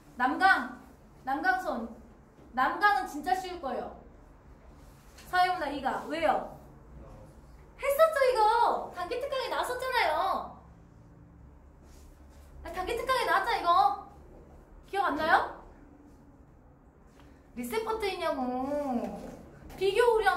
남강은 진짜 쉬울 거예요. 사회문화 2가. 왜요? 했었죠, 이거. 단기 특강에 나왔었잖아요. 단기 특강에 나왔잖아, 이거. 기억 안 나요? 리셋 버튼이냐고.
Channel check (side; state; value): both; identical; correlation 1.00